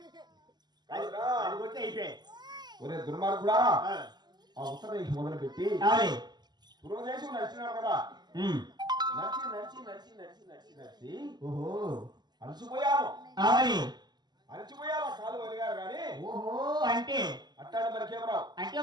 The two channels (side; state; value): left; late; 0.21 ms